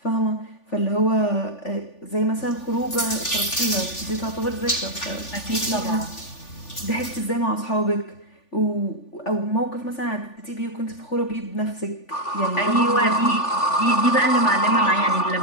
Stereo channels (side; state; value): right; late; 3.4 ms